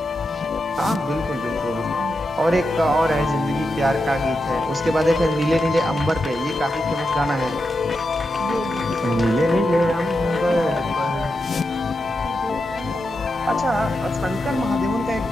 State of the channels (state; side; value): normal; both; correlation 0.87